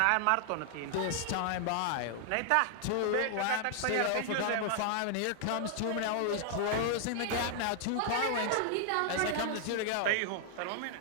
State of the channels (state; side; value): different; both; correlation 0.00